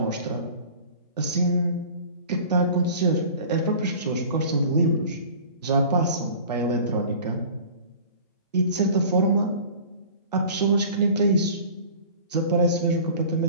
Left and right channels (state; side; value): inverted; both; correlation -0.43